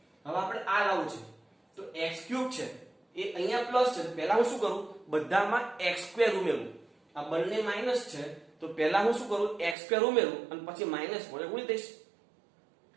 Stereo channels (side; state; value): left; drops out; at 9.8 s